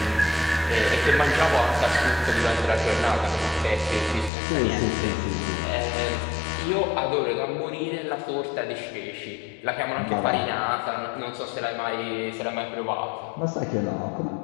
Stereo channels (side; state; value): right; drops out; at 4.3 s